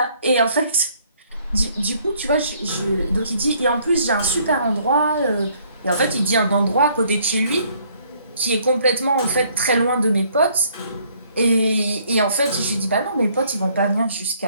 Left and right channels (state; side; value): inverted; both; correlation -0.64